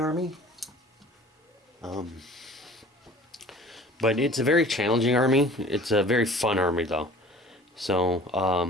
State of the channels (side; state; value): both; normal; correlation 0.47